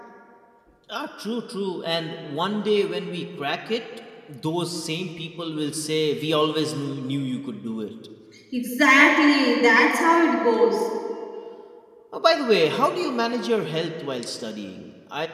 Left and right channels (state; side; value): identical; both; correlation 1.00